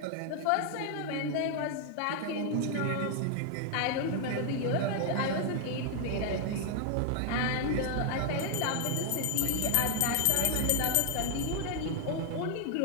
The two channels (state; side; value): different; both; correlation 0.00